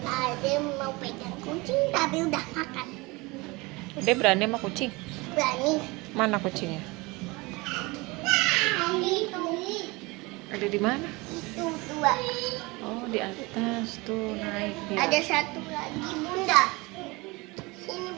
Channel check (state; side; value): quieter; left; 24.2 dB